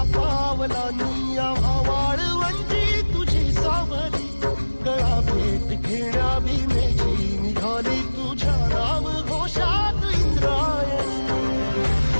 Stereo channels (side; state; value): both; inverted; correlation -1.00